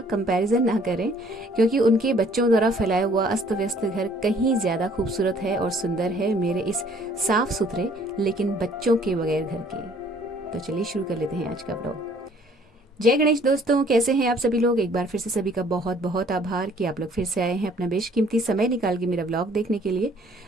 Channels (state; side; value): normal; both; correlation 0.58